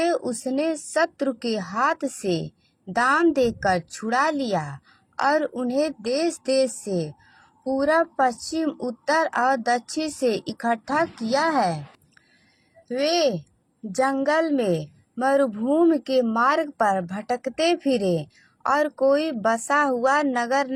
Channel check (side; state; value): both; identical; correlation 1.00